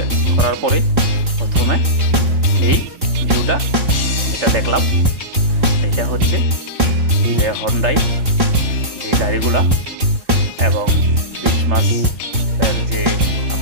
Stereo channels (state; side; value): late; left; 3.3 ms